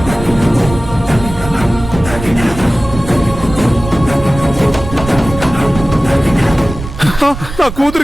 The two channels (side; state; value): right; noise; rumble, 10 dB below the sound